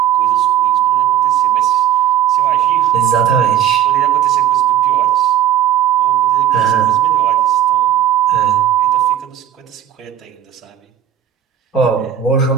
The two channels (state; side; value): quieter; left; 10.5 dB